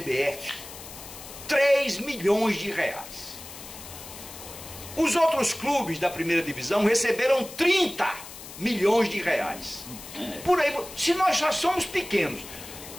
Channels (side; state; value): left; noise; hiss, 14 dB below the sound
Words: 3 milhões de reais. Os outros clubes da primeira divisão receberam 30 milhões de reais. Por aí, se nós já somos pequenos,